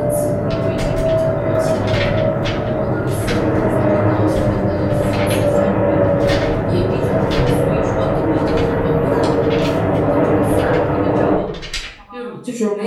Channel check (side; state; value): both; identical; correlation 1.00